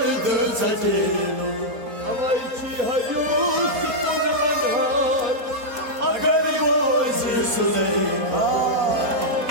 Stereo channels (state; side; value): late; left; 4.2 ms